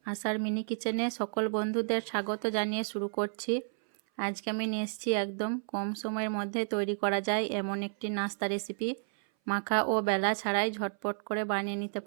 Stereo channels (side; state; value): left; silent; 57 dB below the other